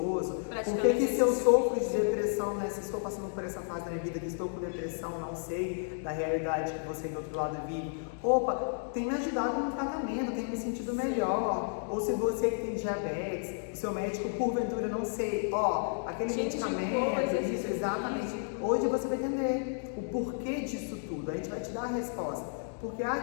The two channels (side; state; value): right; silent; digital silence